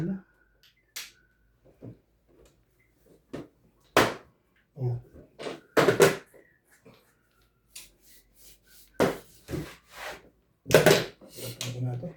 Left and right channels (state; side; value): identical; both; correlation 1.00